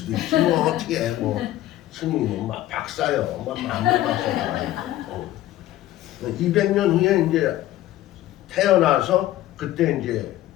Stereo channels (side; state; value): right; quieter; 14.5 dB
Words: 있지. 뭐 어떻게 해. 뭐 스님이 막 박사요. 막 만물 박사요. 200년 후에 이제 태어나서 그때 이제